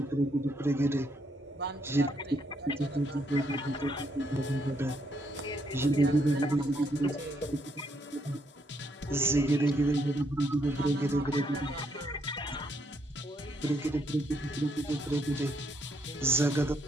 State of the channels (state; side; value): normal; both; correlation 0.74